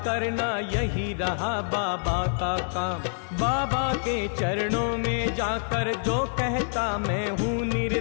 करना यही रहा बाबा का काम। बाबा के चरणों में जाकर जो कहता मैं हूँ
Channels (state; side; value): silent; right; digital silence